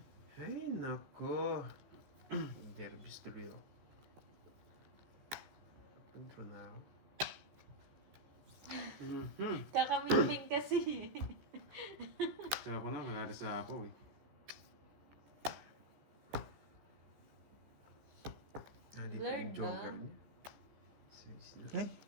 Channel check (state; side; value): late; left; 14 ms